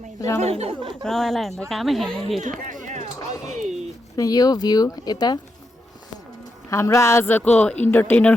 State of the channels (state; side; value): normal; both; correlation 0.84